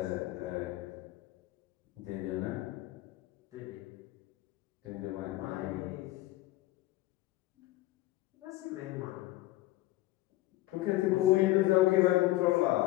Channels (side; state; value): right; quieter; 17.4 dB